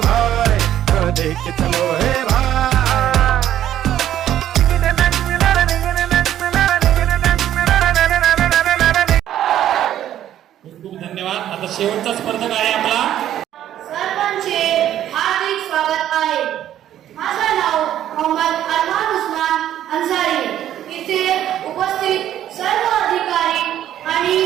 भाई जरा देख के चलो, हे भाई। खूप धन्यवाद। आता शेवटचा स्पर्धक आहे आपला। सर्वांचे हार्दिक स्वागत आहे। माझं नाव मोहम्मद अरमान उस्मान अन्सारी। इथे उपस्थित सर्व अधिकारी आणि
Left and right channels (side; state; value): left; quieter; 11.6 dB